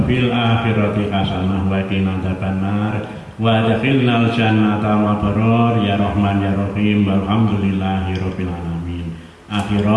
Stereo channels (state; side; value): identical; both; correlation 1.00